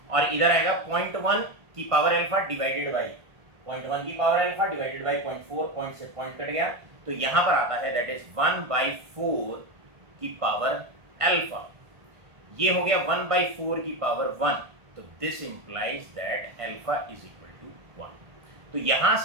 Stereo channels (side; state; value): left; late; 1.5 ms